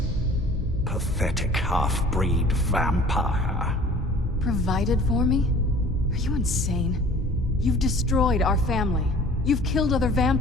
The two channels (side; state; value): both; normal; correlation 0.48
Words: pathetic half-breed vampire. Provided for me? Are you insane? You've destroyed our family. You've killed other